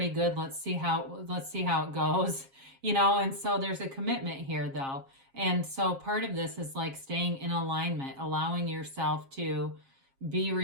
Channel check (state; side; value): late; left; 7.4 ms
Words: good. Let's see how it goes, and so there's a commitment here though. And so part of this is like staying in alignment, allowing yourself to be